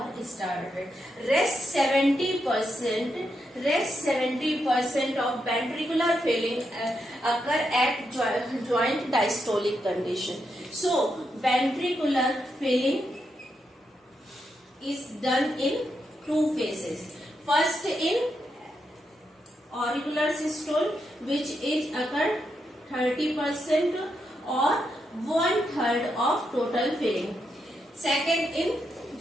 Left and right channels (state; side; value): normal; both; correlation 0.83